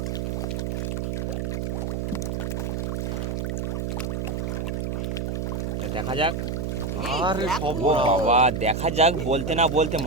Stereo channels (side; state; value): right; noise; hum, 1 dB below the sound